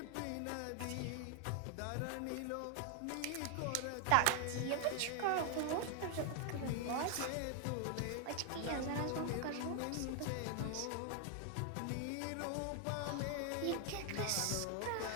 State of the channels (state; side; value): different; both; correlation 0.00